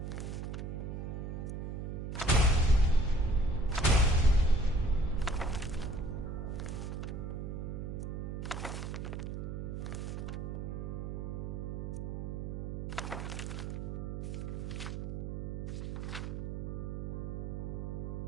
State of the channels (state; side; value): noise; right; hum, 4 dB below the sound